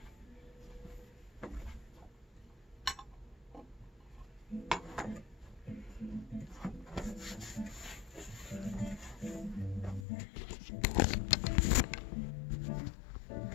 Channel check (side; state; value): right; drops out; at 10.1 s